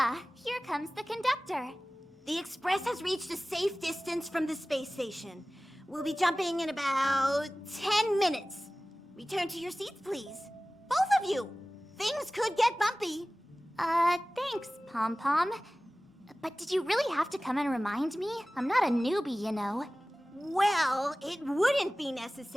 here comes the conductor. The Express has reached a safe distance from the space station. We'll be jumping in about 10 minutes. Return to your seats, please. Both of you! Things could get bumpy. Thanks, Pom Pom. But did you really have to come and remind me? I'm not a newbie, you know. Well, it wouldn't be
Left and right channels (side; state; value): both; normal; correlation 0.97